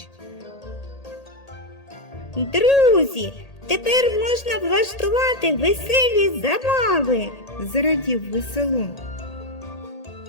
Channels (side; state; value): right; late; 1.8 ms